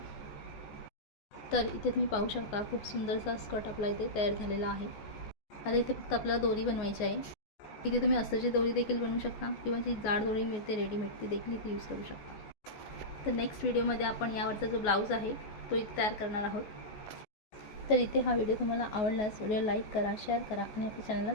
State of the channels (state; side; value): late; right; 14 ms